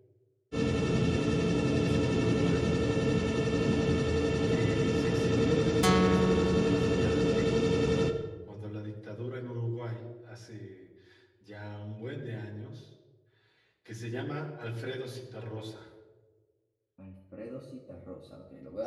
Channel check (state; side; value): identical; both; correlation 1.00